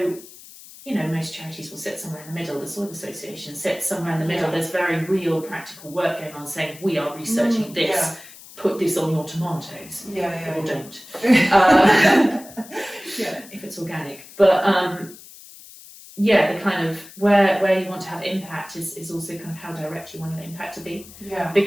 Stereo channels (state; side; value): noise; left; hiss, 19 dB below the sound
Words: you know, most charities will sit somewhere in the middle. The Soil Association sits somewhere in the middle. There's very real practical work going on saying, we are researching this. Yeah. Put this on your tomatoes. Or don't. If it's organic. But the kind of where you want to have impact is also kind of how direct you want your impact to be. Yeah.